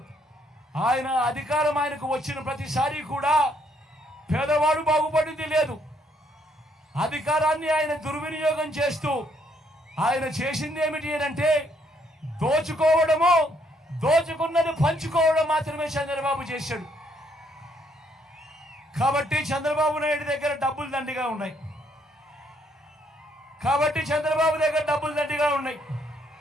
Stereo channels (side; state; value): both; normal; correlation 0.70